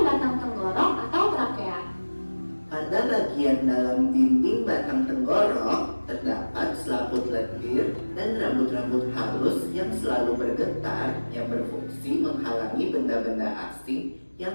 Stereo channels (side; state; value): both; inverted; correlation -1.00